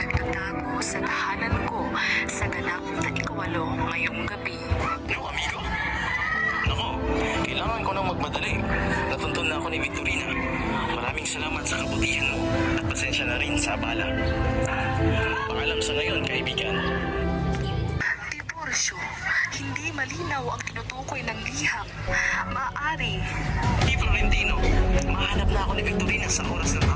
sa tahanan ko sa ganap na ikawalo ngayong gabi. No, amigo? Nako, kailangan ko nang magmadali. Natuntun na ako ni Victorina. Maraming salamat sa kabutihan mo at pasensya na rin sa abala. Paalam sa ngayon, kaibigan. Tiburcio, hindi malinaw ang tinutukoy ng liham. Maaari. Di Florentino, mahanap na ako ni Victorina sa oras na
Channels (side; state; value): both; identical; correlation 1.00